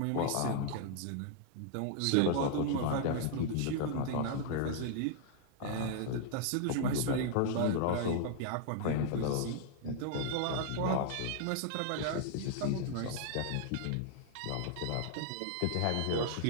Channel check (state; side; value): different; both; correlation -0.01